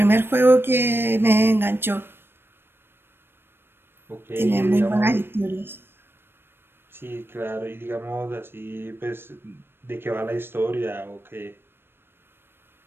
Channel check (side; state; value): left; late; 0.10 ms